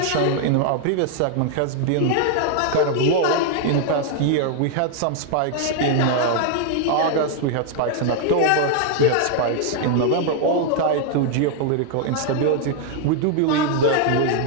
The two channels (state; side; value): different; both; correlation 0.00